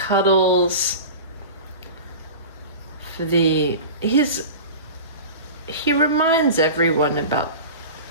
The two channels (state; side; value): inverted; both; correlation -0.32